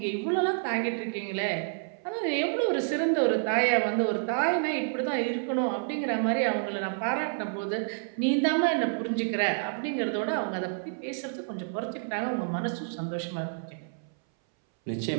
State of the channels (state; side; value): silent; left; 59 dB below the other